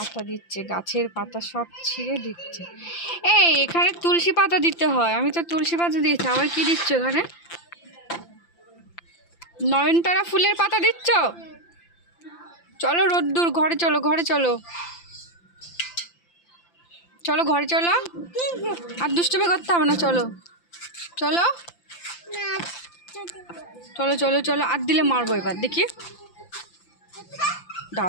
দিচ্ছে, গাছের পাতা সব ছিঁড়ে দিচ্ছে। এই এখানে তুলসী পাতা দিতে হয়, আমি তো তুলসী পাতা দিয়েছি, আবার কি দিচ্ছ এখানে? নয়নতারা ফুলের পাতা দিচ্ছ? চলো রোদ্দুর, ঘরে চলো, ঘরে চলো, চলো ঘরে চলো। আর দুষ্টুমি করতে হবে না, চলো চলো চলো চলো চলো। আর দিলে মারবো এবার, দেখি,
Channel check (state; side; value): late; right; 5.9 ms